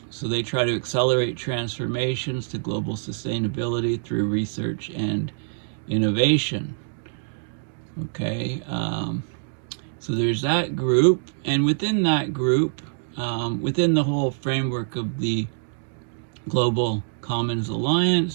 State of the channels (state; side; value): silent; left; digital silence